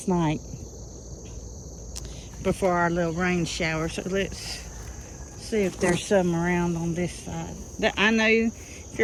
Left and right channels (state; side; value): identical; both; correlation 1.00